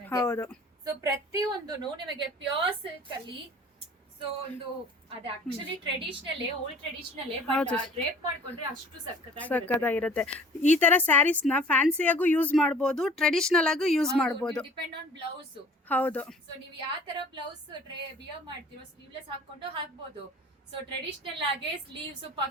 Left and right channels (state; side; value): normal; both; correlation 0.49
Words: ಹೌದು. ಸೊ ಪ್ರತಿಯೊಂದು ನಿಮಗೆ ಪ್ಯೂರ್ ಸಿಲ್ಕ್ ಅಲ್ಲಿ. ಸೊ ಒಂದು ಅದು actually traditional, old traditional, drape ಮಾಡ್ಕೊಂಡ್ರೆ ಅಷ್ಟು ಸಕ್ಕತ್ತಾಗಿರುತ್ತೆ. ಈ ತರ ಸ್ಯಾರೀಸ್ ನ ಫ್ಯಾನ್ಸಿಯಾಗೂ ಯೂಸ್ ಮಾಡಬಹುದು, ಟ್ರೆಡಿಷನಲ್ ಆಗೂ ಯೂಸ್ ಮಾಡಬಹುದು. Depend on blouse. ಹೌದು. ಸೊ ನೀವು ಯಾವ ತರ ಬ್ಲೌಸ್ ವಿಯರ್ ಮಾಡ್ತೀರೋ ಸ್ಲೀವ್ಲೆಸ್ ಹಾಕೊಂಡು ಹಾಕ್ಬೋದು. ಸೊ ಟ್ರೆಡಿಷನಲ್ ಆಗಿ ಸ್ಲೀವ್ಸ್,